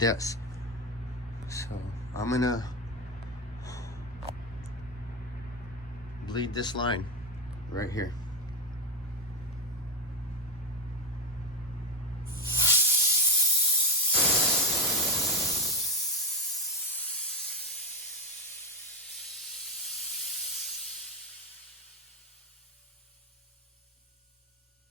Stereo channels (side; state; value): both; normal; correlation 0.11